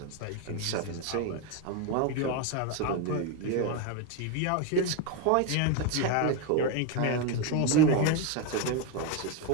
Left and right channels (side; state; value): both; different; correlation 0.02